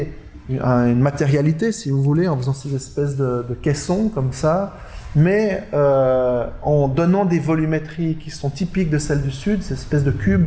une matérialité, si vous voulez, en faisant ces espèces de caissons comme ça, mais en donnant des volumétries qui sont typiques de celles du Sud, ces espèces de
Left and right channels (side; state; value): both; identical; correlation 1.00